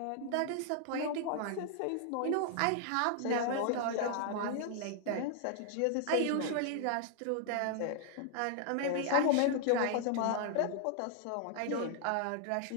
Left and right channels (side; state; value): both; different; correlation 0.00